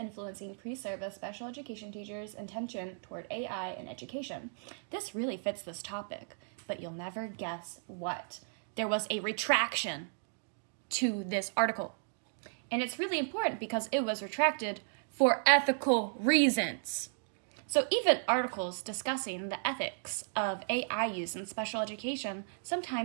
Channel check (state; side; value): silent; left; digital silence